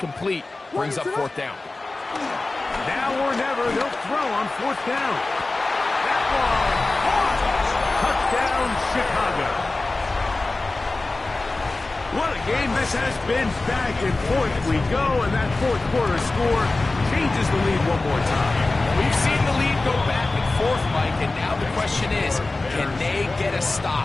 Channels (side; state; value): right; quieter; 3.2 dB